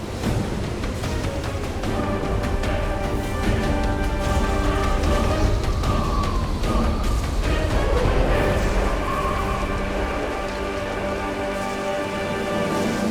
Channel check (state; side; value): identical; both; correlation 1.00